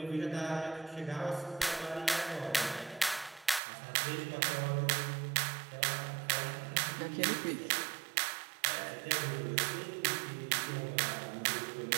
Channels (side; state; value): left; drops out; at 3.6 s